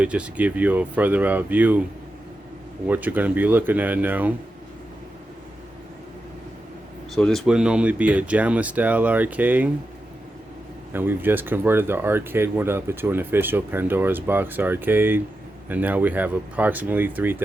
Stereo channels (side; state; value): both; normal; correlation 0.89